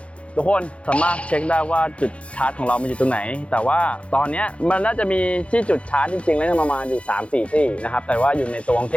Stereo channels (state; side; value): late; right; 0.061 ms